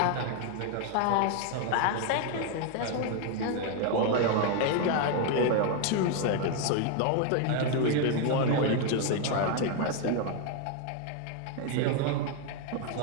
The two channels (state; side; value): different; both; correlation 0.01